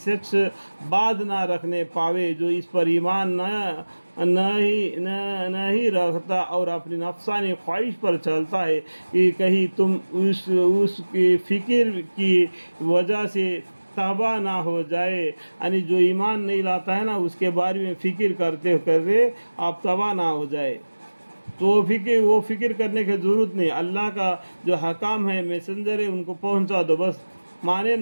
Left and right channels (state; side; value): inverted; both; correlation -1.00